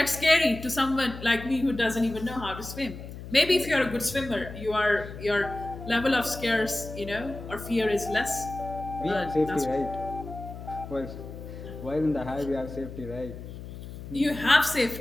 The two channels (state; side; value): noise; left; hum, 12 dB below the sound